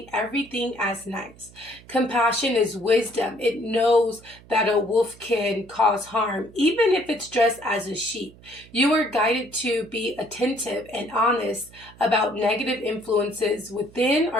everything as nice. Compassion is wisdom. It knows that a wolf can cause harm, even if it's dressed as a sheep. You are guided to be attentive and honest about negative influences within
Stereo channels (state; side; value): noise; right; hum, 23 dB below the sound